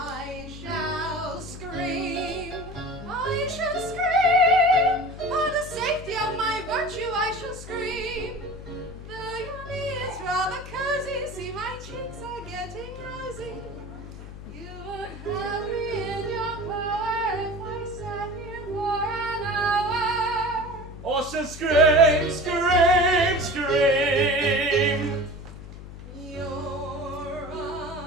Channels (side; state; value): left; noise; hum, 13 dB below the sound